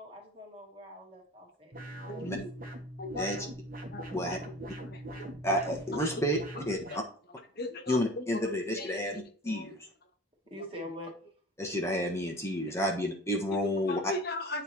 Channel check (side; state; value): both; normal; correlation 0.40